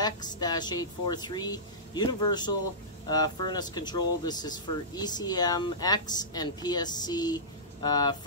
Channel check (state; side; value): normal; both; correlation -0.19